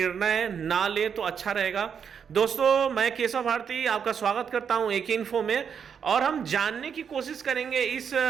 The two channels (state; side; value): quieter; left; 7.2 dB